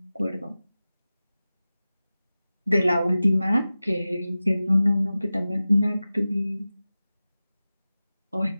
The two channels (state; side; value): inverted; both; correlation -0.96